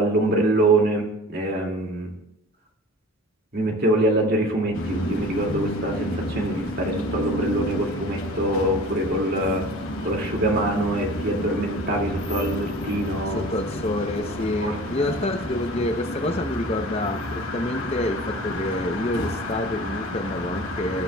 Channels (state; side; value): normal; both; correlation 0.41